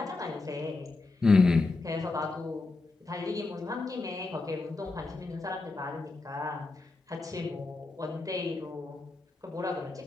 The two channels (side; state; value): right; quieter; 3.5 dB